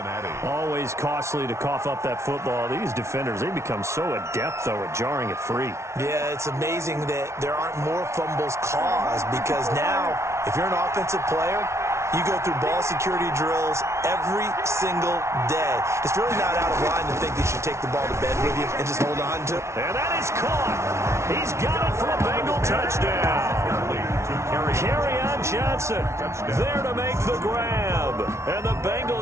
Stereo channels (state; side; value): late; left; 0.13 ms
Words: Always costly to cough up that football. These defenders, they become so adept, though, at jarring it free. Yeah, it's amazing that there aren't more fumbles caused because now, if you're an offensive player, you go through ball security drills every single day. It's really not out of line to think you should take the ball to bed with you and just hold on to it. And that is caught. He's got it for a Bengal touchdown. Kerryon Johnson there to make the grab. And the